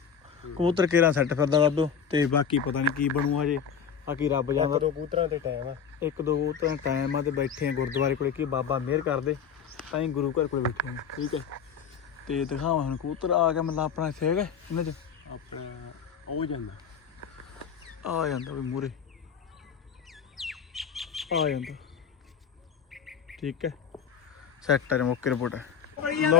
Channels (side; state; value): right; quieter; 7.0 dB